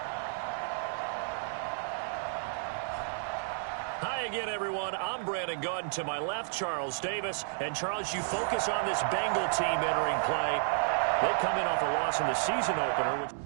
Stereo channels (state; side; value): silent; left; digital silence